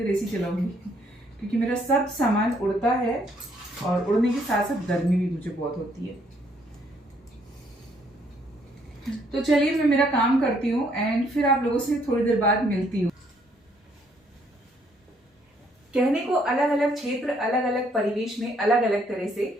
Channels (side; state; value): both; normal; correlation 0.68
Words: एसी चलाऊंगी, क्योंकि मेरा सब सामान उड़ता है, और उड़ने के साथ साथ गर्मी भी मुझे बहुत होती है। तो चलिए मैं मेरा काम करती हूँ, एंड फिर आप लोगों से थोड़ी देर बाद मिलती हूँ। कहने को अलग अलग क्षेत्र, अलग अलग परिवेश में अलग अलग तरह से